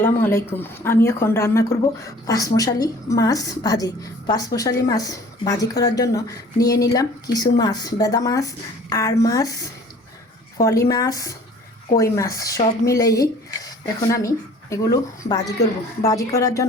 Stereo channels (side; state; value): both; normal; correlation 0.50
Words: আলাইকুম। আমি এখন রান্না করব পাঁচমশালি মাছ ভাজি। পাঁচমশালি মাছ ভাজি করার জন্য নিয়ে নিলাম কিছু মাছ, বেদা মাছ, আর মাছ, ফলি মাছ, কই মাছ সব মিলেই এখন আমি এগুলো ভাজি করব। ভাজি করার